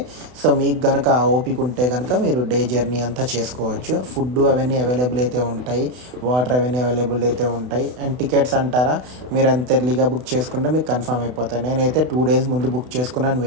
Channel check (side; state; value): left; late; 32 ms